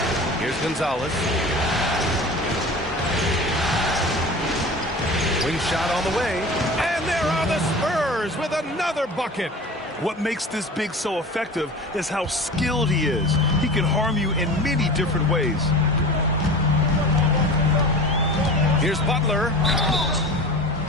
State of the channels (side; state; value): both; normal; correlation 0.35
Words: Here's Gonzalez. Wing shot on the way. And there are the Spurs with another bucket. What makes this big so effective is how skilled he is. He can harm you in many different ways. Here's Butler.